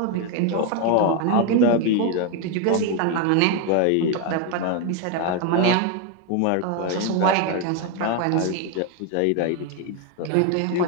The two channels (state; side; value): different; both; correlation 0.01